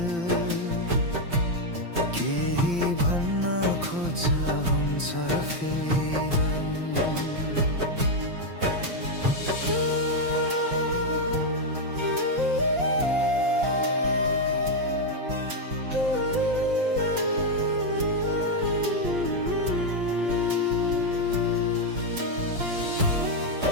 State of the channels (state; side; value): late; left; 5.8 ms